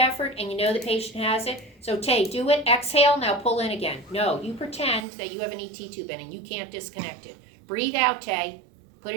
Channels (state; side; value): drops out; left; at 5.1 s